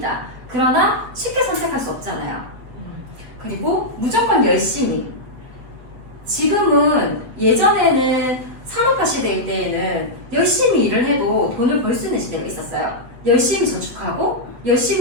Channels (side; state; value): left; late; 7.7 ms